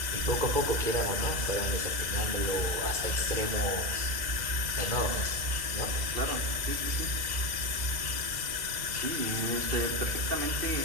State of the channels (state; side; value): late; left; 2.1 ms